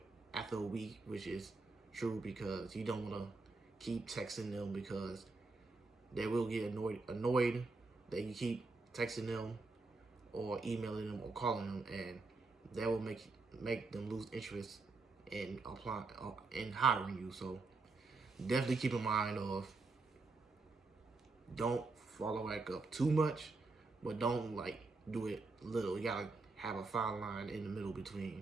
after a week, which is true because you don't want to keep texting them because they will get annoyed that you keep texting them or emailing them or calling them, and that will make them lose interest in applying in hiring you. So definitely keep in mind of don't follow back up too much, but don't like do it little. You gotta have a fine line in the middle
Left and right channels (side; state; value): left; quieter; 3.7 dB